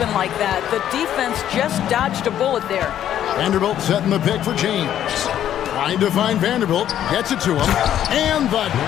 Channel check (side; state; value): right; quieter; 10.9 dB